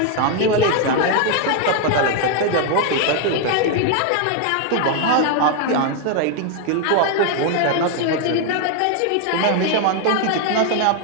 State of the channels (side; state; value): both; different; correlation 0.01